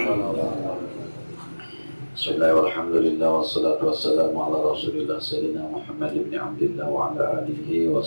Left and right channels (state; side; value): inverted; both; correlation -1.00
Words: Bismillahirrahmanirrahim. Wassalatu wassalamu ala rasulillah Sayyidina Muhammad ibn Abdillah wa ala alihi wa